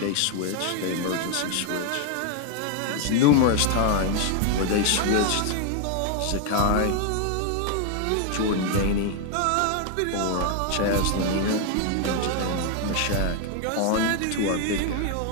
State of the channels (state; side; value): different; both; correlation 0.00